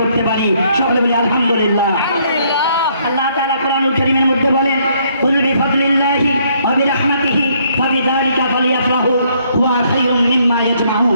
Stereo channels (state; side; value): inverted; both; correlation -0.68